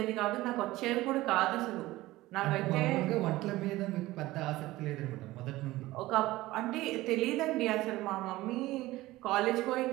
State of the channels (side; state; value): left; quieter; 17.8 dB